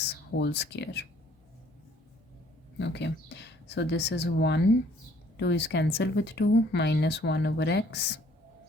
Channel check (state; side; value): normal; both; correlation 0.59